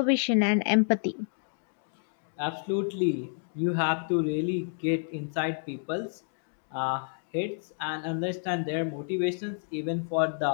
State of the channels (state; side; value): silent; right; 58 dB below the other